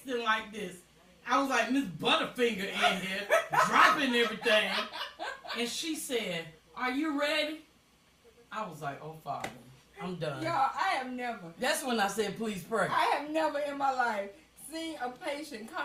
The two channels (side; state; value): both; identical; correlation 1.00